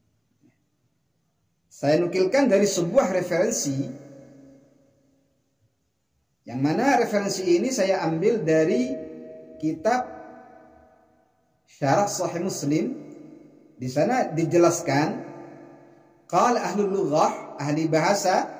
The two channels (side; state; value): both; identical; correlation 1.00